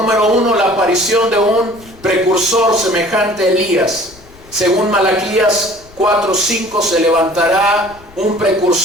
1, la aparición de un precursor semejante a Elías. Según Malaquías 4:5 se levantará un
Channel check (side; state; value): left; noise; rumble, 25 dB below the sound